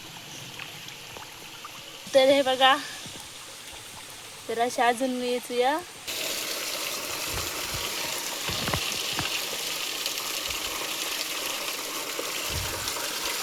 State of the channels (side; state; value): both; identical; correlation 1.00